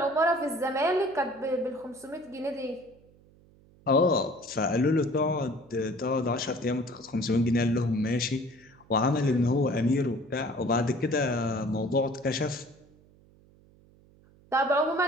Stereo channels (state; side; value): noise; right; hum, 28 dB below the sound